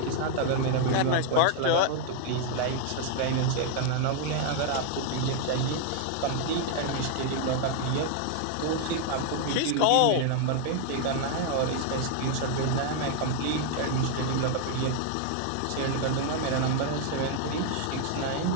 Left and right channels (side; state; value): both; different; correlation 0.00